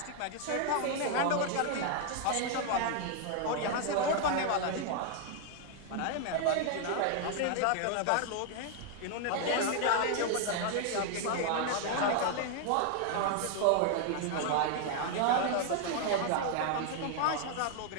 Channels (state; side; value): different; both; correlation 0.00